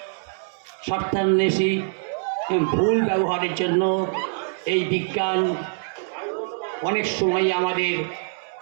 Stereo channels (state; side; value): silent; left; 62 dB below the other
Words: স্বার্থান্বেষী, ভুল ব্যবহারের জন্য এই বিজ্ঞান অনেক সময় আমাদের